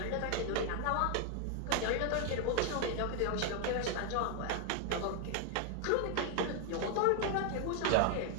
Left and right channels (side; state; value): both; different; correlation 0.00